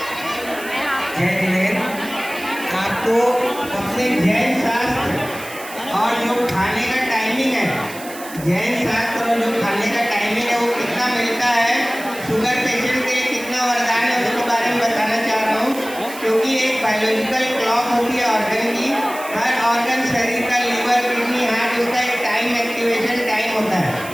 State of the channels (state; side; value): noise; right; hiss, 15 dB below the sound